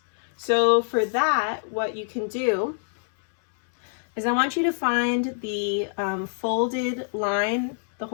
So for that, what you can do is I want you to find the folded line, the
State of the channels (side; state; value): right; silent; 62 dB below the other